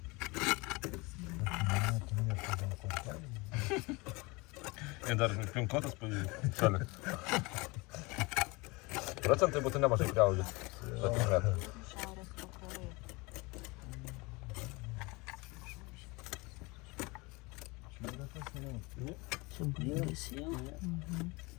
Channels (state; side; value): quieter; right; 25.4 dB